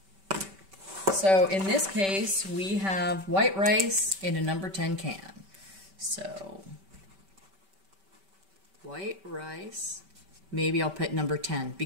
So in this case, we have white rice in a number 10 can. So white rice, maybe I'll put number 10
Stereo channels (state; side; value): late; left; 5.2 ms